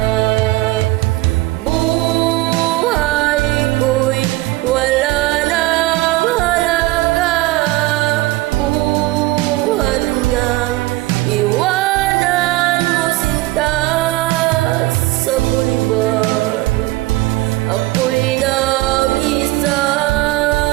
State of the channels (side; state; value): left; quieter; 19.4 dB